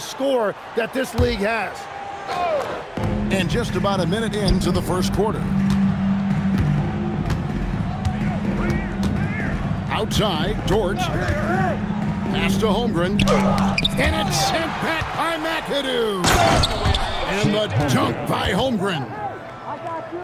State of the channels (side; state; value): both; identical; correlation 1.00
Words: that this league has. And just about a minute into the first quarter. Outside, George. Pass to Holmgren. And it's sent back by McAdoo. And the dunk by Holmgren.